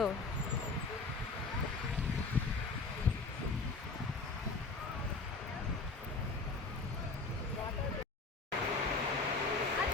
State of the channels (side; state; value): right; quieter; 3.9 dB